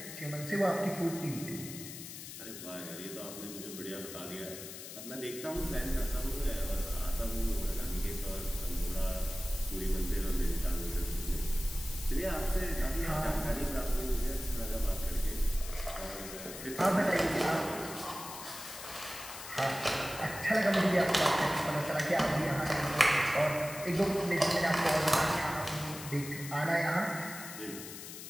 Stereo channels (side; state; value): left; noise; hiss, 11 dB below the sound